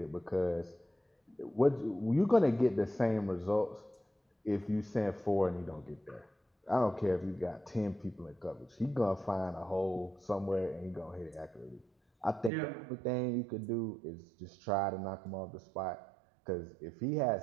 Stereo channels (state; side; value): drops out; left; at 12.5 s